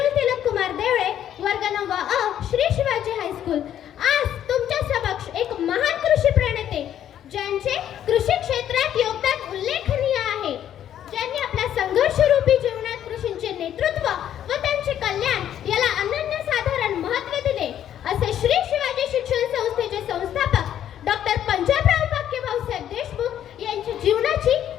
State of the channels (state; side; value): quieter; right; 10.6 dB